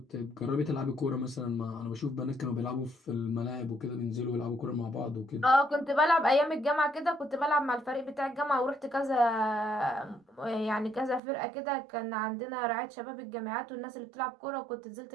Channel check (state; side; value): drops out; left; at 11.2 s